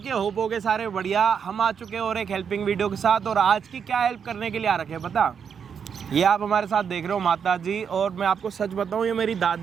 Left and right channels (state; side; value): quieter; left; 7.1 dB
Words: होप होगे सारे बढ़िया। हम आ चुके हैं और एक हेल्पिंग वीडियो के साथ। और आज की क्या हेल्प करने के लिए आ रखे हैं पता? ये आप हमारे साथ देख रहे हो माता जी। और मैं आपको सच बताऊं, ये मेरी